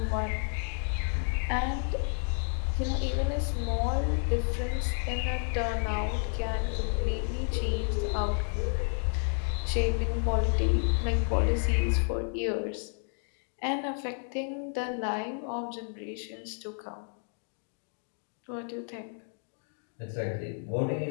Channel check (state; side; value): silent; right; 57 dB below the other